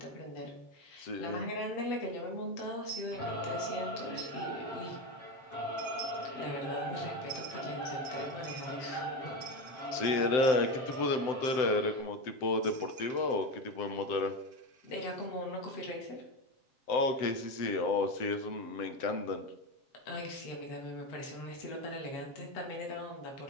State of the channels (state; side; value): late; right; 7.8 ms